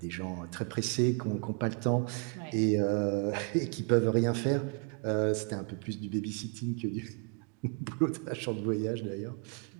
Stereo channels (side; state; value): left; quieter; 35.8 dB